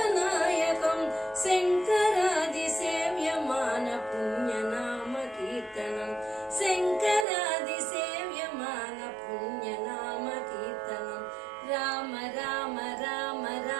शङ्करादिसेव्यमान पुण्यनाम कीर्तनं शङ्करादिसेव्यमान पुण्यनाम कीर्तनं राम राम राम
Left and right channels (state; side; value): drops out; left; at 7.2 s